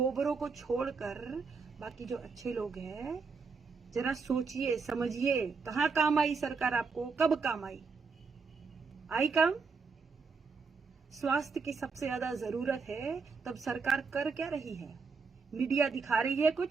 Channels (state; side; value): quieter; left; 4.8 dB